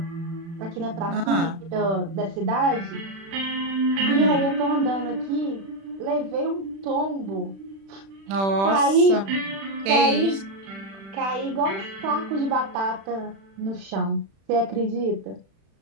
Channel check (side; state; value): left; late; 36 ms